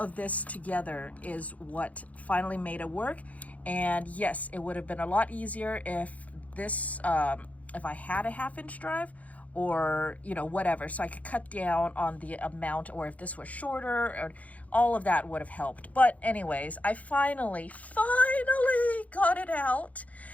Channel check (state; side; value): late; right; 0.070 ms